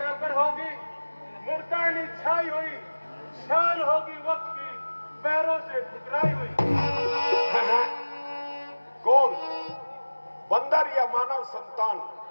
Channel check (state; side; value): inverted; both; correlation -1.00